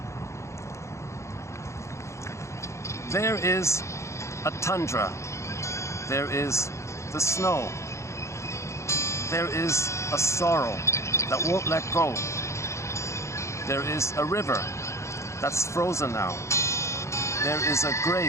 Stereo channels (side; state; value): right; late; 0.14 ms